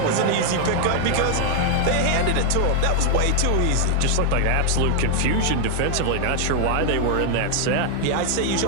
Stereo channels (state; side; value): different; both; correlation 0.00